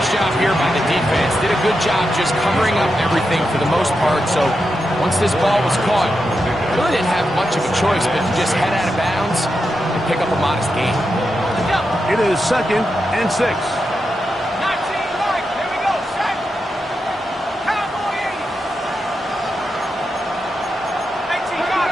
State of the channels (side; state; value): both; normal; correlation 0.87